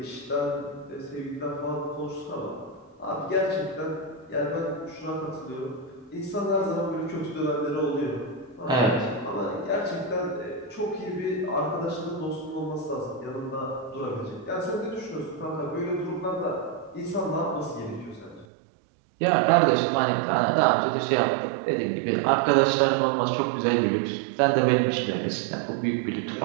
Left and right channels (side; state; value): left; drops out; at 18.4 s